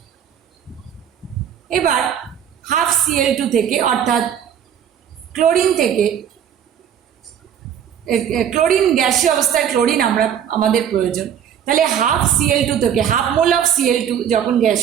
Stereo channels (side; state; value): left; quieter; 9.0 dB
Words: এবার হাফ Cl2 থেকে, অর্থাৎ ক্লোরিন থেকে ক্লোরিন গ্যাসীয় অবস্থায় ক্লোরিন আমাদের প্রয়োজন, তাহলে হাফ Cl2 থেকে হাফ মোল অফ Cl2 যখন